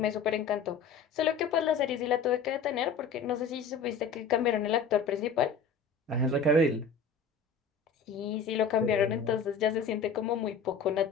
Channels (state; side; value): quieter; right; 5.5 dB